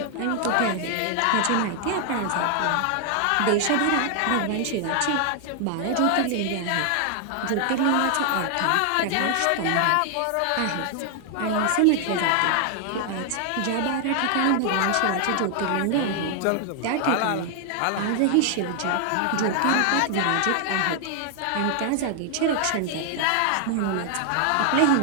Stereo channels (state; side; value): different; both; correlation 0.00